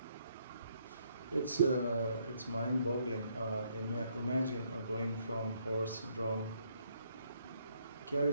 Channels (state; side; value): inverted; both; correlation -0.70